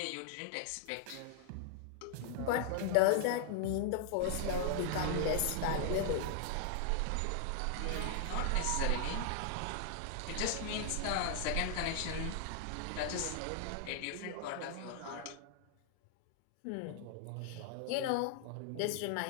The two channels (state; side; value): different; both; correlation -0.01